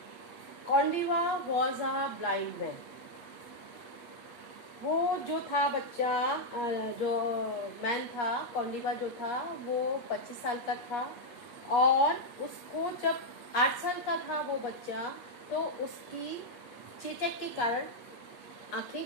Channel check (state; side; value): late; right; 8.3 ms